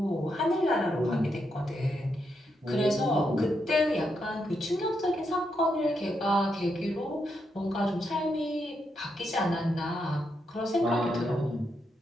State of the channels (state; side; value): normal; both; correlation 0.81